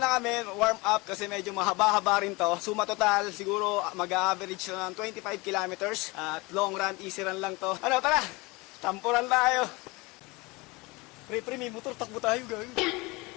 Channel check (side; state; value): right; quieter; 24.5 dB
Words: kami, warm up kasi medyo mahaba-haba rin to. Suma total, siguro mag-average ng 25 kilometers. At long run, easy run lang to. Ano, tara! Tampuran tayo! Pre, may motor, takbo tayo, gawin.